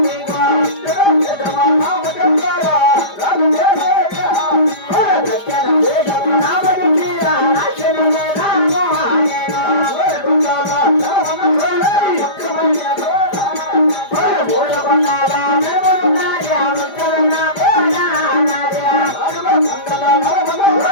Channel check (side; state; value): right; late; 5.0 ms